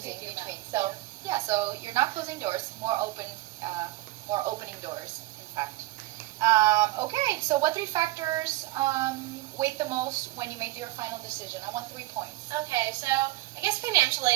between. So yeah, so you're not closing doors, more opening doors, in fact. Okay, so what 3 factors weighed the most when you made your final decision? I want 3 points. Okay, so I guess financial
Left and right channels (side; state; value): left; quieter; 18.5 dB